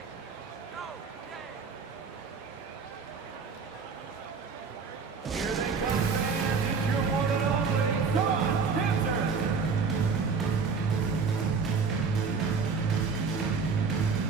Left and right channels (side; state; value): left; quieter; 5.2 dB